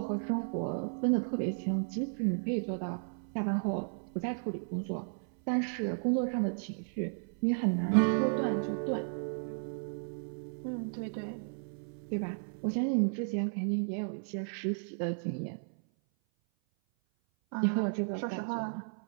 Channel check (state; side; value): silent; left; 55 dB below the other